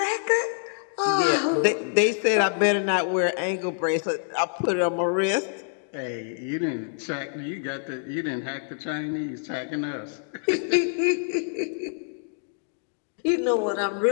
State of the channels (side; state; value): right; silent; digital silence